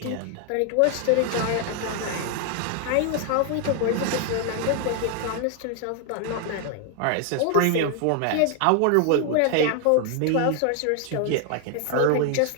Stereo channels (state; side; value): different; both; correlation 0.00